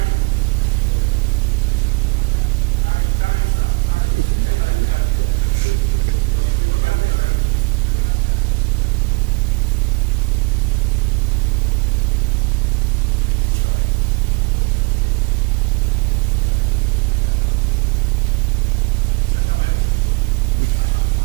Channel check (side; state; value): left; quieter; 27.2 dB